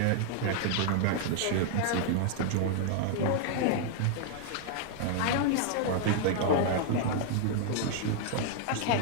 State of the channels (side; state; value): both; different; correlation 0.00